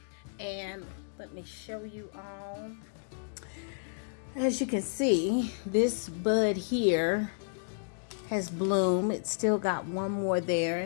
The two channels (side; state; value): right; silent; digital silence